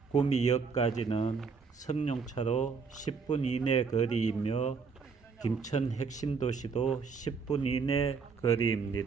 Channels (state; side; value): quieter; left; 5.2 dB